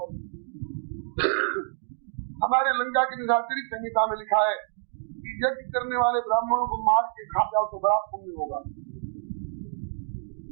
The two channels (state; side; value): silent; left; digital silence